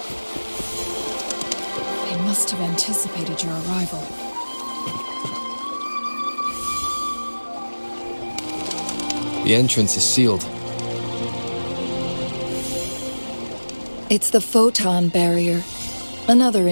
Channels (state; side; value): inverted; both; correlation -1.00